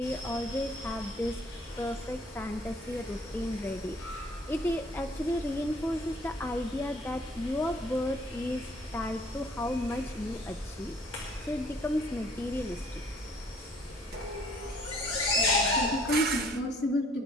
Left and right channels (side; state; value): both; normal; correlation 0.59